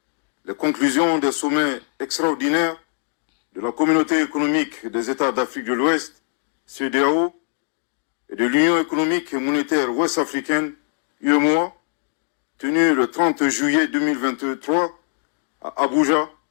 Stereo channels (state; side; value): silent; right; digital silence